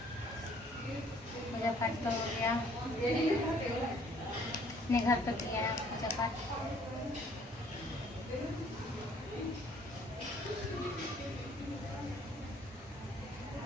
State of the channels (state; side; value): normal; both; correlation 0.60